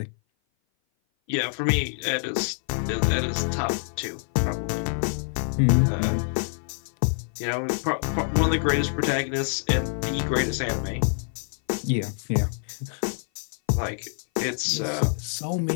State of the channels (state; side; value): silent; right; 57 dB below the other